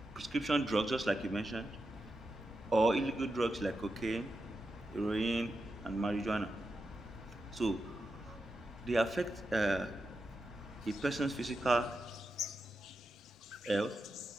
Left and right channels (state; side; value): normal; both; correlation 0.88